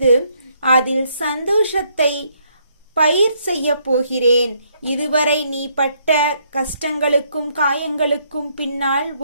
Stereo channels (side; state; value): both; inverted; correlation -0.71